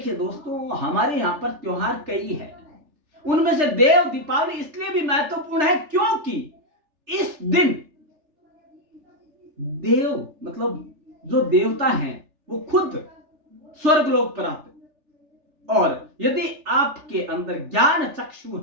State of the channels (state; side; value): late; left; 3.4 ms